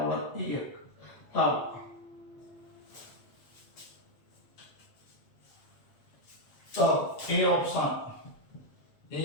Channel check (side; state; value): right; late; 8.0 ms